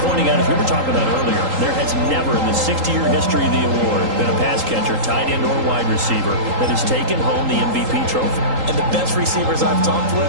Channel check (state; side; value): late; left; 3.8 ms